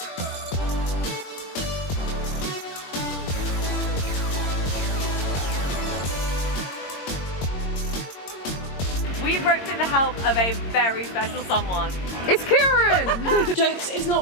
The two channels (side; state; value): right; late; 22 ms